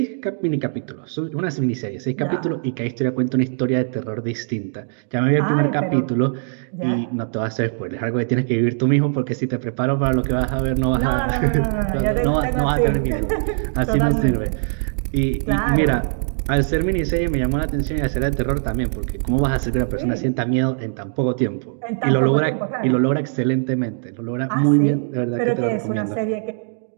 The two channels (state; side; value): silent; left; digital silence